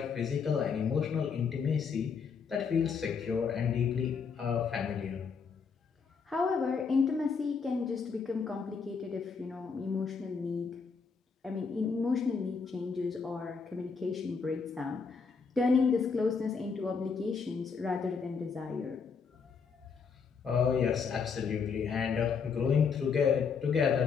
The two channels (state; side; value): quieter; right; 5.6 dB